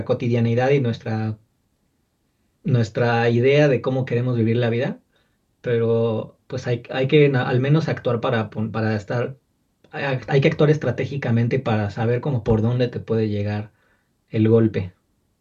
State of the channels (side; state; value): both; identical; correlation 1.00